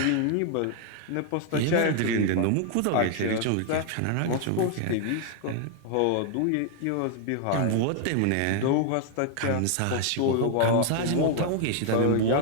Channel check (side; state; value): both; different; correlation 0.00